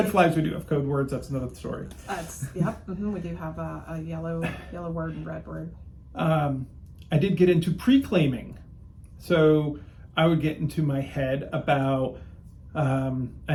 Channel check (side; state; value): both; identical; correlation 1.00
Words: flags, we do have code words. That's another story. Yep. Mm-hmm, we do have a yellow word and red word. I did get into pre-claiming. So I would get into my head about,